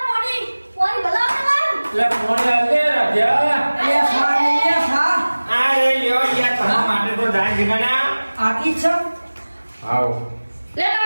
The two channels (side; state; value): both; inverted; correlation -1.00